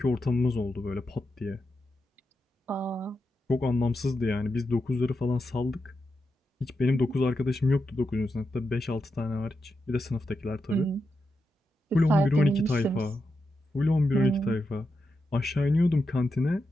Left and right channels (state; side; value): normal; both; correlation 0.87